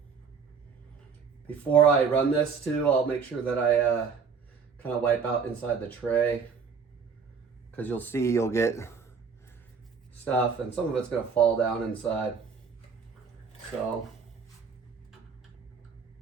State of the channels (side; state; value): left; quieter; 5.8 dB